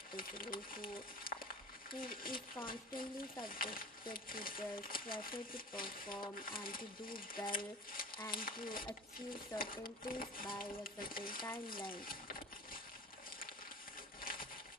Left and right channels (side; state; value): both; normal; correlation 0.38